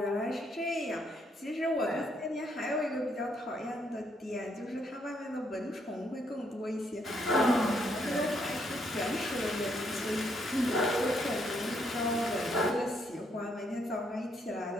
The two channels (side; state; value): both; normal; correlation 0.73